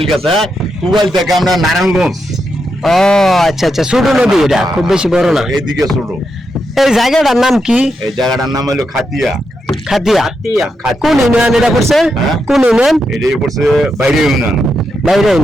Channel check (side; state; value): both; normal; correlation 0.84